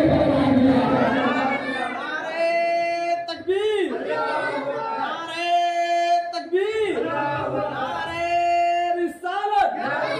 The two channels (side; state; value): both; identical; correlation 1.00